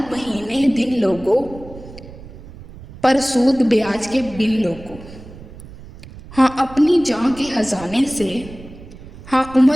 महीने दिन लोगों, पर सूद ब्याज के बिन लोगों। हाँ अपनी जान के खजाने से, हाँ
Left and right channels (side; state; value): right; noise; rumble, 17 dB below the sound